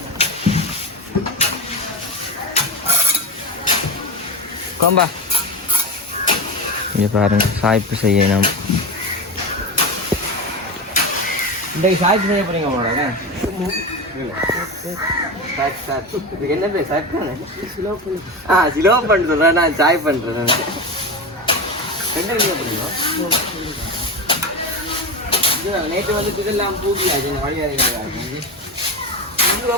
கோம்பா இங்கே பாருங்க, சாய்ப்பு செய்யணும். இன்றைக்கு சாய்ப்பு செய்ய போறீங்க போல. என்ன பேர் சாய்ப்பு? சிலோப்பன் சொல்றேன், நான் சாய் பண்றேன். நேற்று வந்து இதெல்லாம் பூட்டியாச்சு வழிகாரிங்க. இது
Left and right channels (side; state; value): both; normal; correlation 0.22